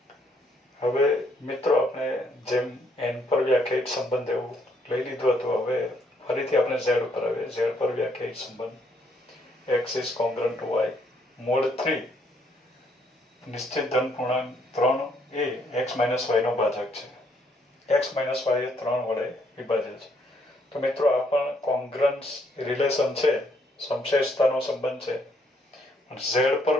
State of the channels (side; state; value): both; normal; correlation 0.70